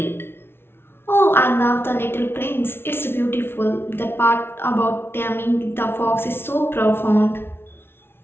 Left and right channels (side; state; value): right; late; 0.11 ms